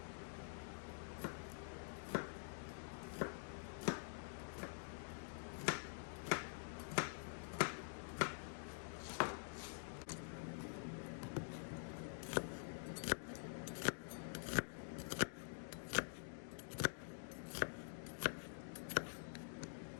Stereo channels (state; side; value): silent; right; digital silence